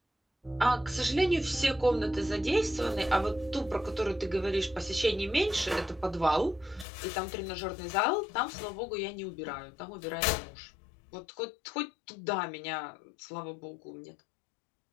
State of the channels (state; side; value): drops out; right; at 6.9 s